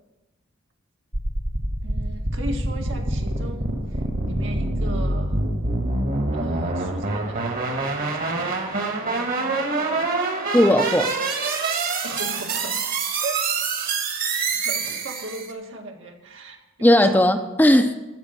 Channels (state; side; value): normal; both; correlation 0.60